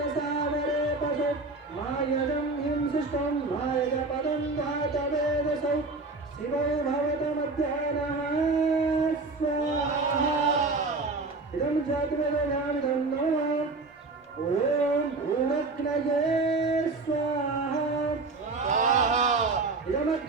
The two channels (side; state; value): left; quieter; 3.6 dB